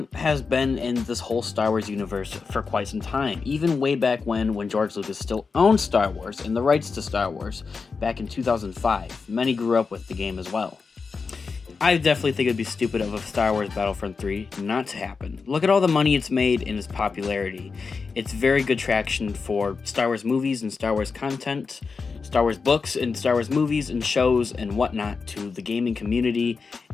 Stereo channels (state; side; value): quieter; right; 4.8 dB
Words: has been in this whole Star Wars universe for quite some time, even way back when George Lucas still owned Star Wars and the rights to Star Wars, back in 2005. Many grew up with the game as well. I definitely think it'd be stupid of a Star Wars Battlefront 3 not to happen. Look at all the money it's made and its popularity. It's very good traction for Star Wars movies and Star Wars content, Star Wars books and Star Wars movies and shows and whatnot to the gaming community,